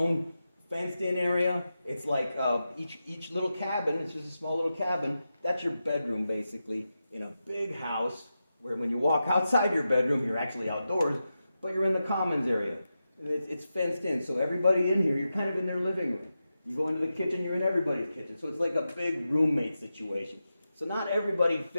fenced-in area. It's like each little cabin, it's just a small little cabin. That's your bedroom, basically, in a big house where when you walk outside your bedroom, you're actually outdoors, but you're in the commons area. It's fenced in, so everybody in here, you're kind of in their living room. You go into the kitchen, you're in everybody's kitchen. So it's like a big roommate situation. So not everybody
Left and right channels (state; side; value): inverted; both; correlation -0.91